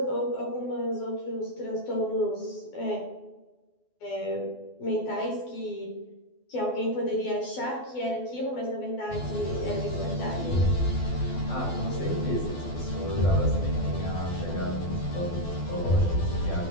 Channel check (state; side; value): late; right; 12 ms